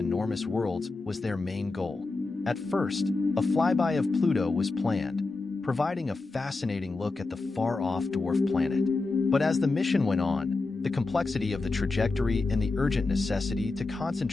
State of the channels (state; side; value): quieter; right; 3.6 dB